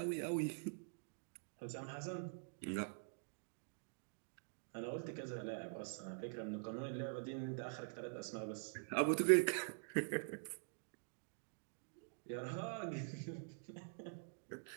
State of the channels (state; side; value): silent; left; digital silence